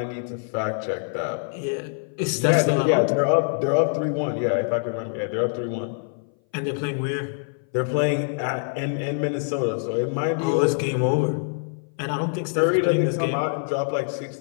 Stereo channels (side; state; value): right; silent; 58 dB below the other